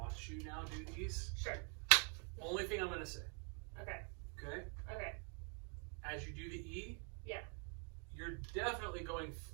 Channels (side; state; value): left; quieter; 38.8 dB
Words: you now do these. Sure. Only thing I'm going to say. Okay. Okay? Okay. As you do the E, Yeah. you're definitely going